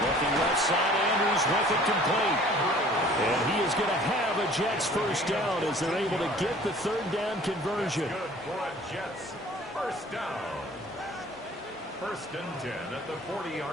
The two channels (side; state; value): both; normal; correlation 0.50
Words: Looking left side, Andrews with it complete. And he is going to have a Jets first down as they're able to get the 3rd down conversion. Good for a Jets first down. 1st and 10 at the